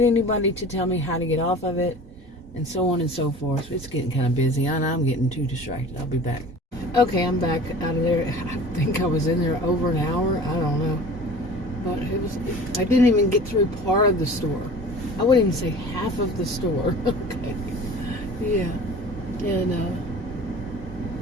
anybody to tell me how to get off of it, and so on and so forth. It's getting kind of busy, and I'm getting too distracted. I'll be back. Okay, I'm back out of there. I think I was in there over an hour. I don't know. But I didn't even get through part of the store. I wouldn't even say half of the store. Okay. Yeah. And,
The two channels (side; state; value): both; normal; correlation 0.42